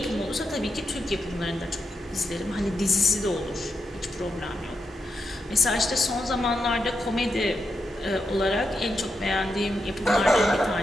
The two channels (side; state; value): both; normal; correlation 0.86